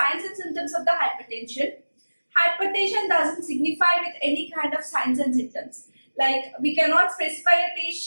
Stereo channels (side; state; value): both; inverted; correlation -1.00